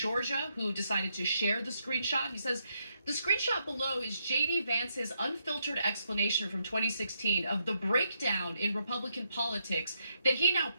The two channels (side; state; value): both; inverted; correlation -0.79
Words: who decided to share the screenshot. He says, the screenshot below is J.D. Vance's unfiltered explanation from 2016 of the breakdown in Republican politics that he now